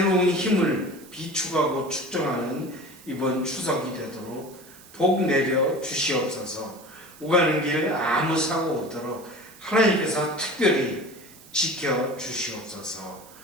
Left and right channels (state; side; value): noise; right; hiss, 22 dB below the sound